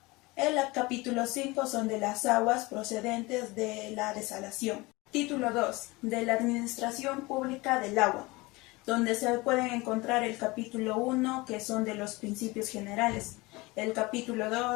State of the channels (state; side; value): quieter; right; 22.9 dB